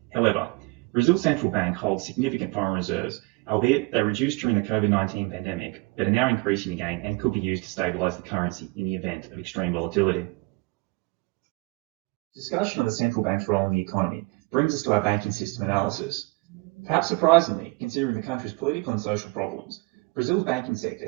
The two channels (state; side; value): quieter; left; 25.9 dB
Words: However, Brazil's central bank holds significant foreign reserves, albeit they reduced during the COVID-19 pandemic, but are now increasing again and could be used to stabilise the currency in the event of extreme volatility. Discussion of the central bank's role in the economy brings us to our banking system analysis. Perhaps surprisingly, considering the country's political and social problems, Brazil's banking sector